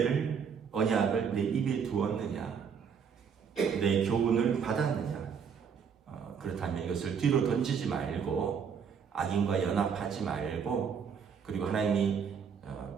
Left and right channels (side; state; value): left; quieter; 6.8 dB